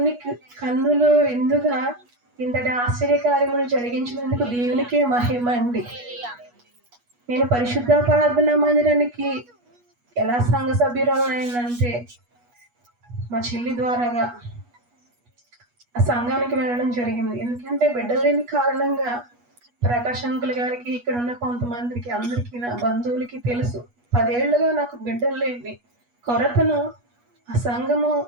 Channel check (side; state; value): left; late; 8.3 ms